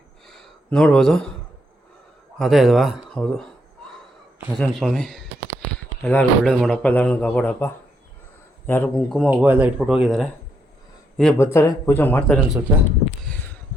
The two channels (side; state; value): both; normal; correlation 0.77